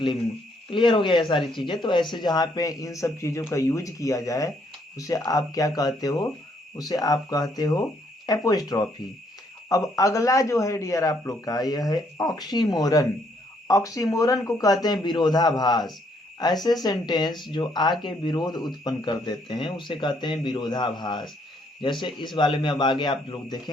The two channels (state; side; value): normal; both; correlation 0.70